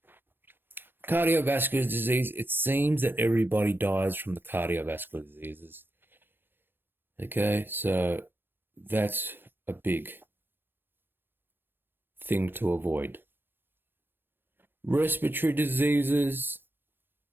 Cardiovascular disease, it seems that everybody dies from the cardiovascular diseases. Okay, so that's a big thing to avoid. Respiratory diseases,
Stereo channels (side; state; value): left; late; 0.10 ms